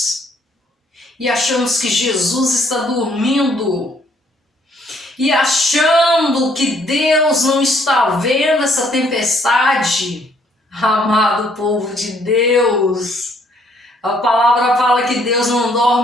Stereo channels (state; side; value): normal; both; correlation 0.66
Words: e achamos que Jesus está dormindo e achando que Deus não está vendo essa tempestade. Amado povo de Deus, a palavra fala que Deus não